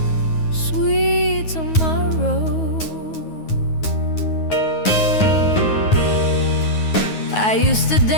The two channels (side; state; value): right; late; 9.4 ms